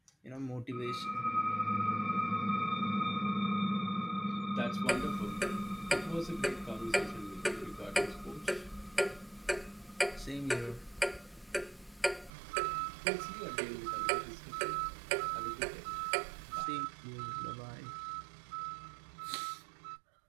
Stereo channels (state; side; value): drops out; left; at 12.3 s